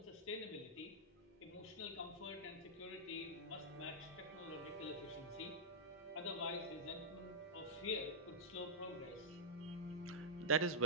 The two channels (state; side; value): normal; both; correlation -0.12